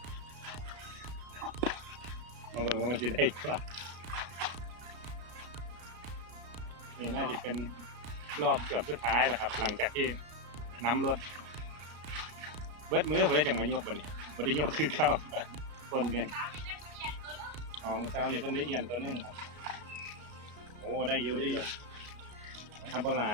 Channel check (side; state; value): left; late; 33 ms